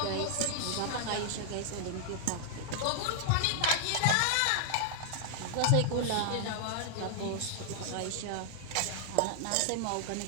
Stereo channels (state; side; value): different; both; correlation 0.00